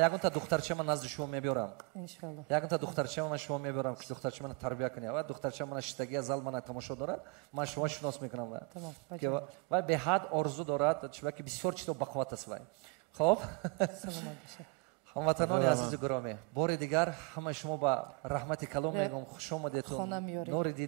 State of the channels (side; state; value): left; quieter; 28.5 dB